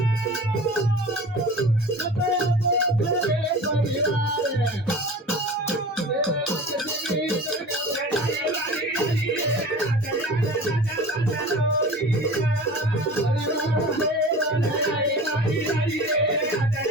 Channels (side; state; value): both; normal; correlation 0.38